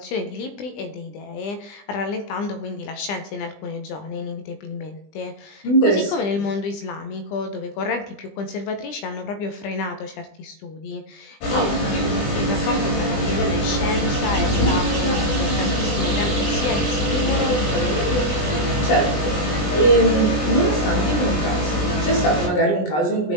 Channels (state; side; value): late; right; 20 ms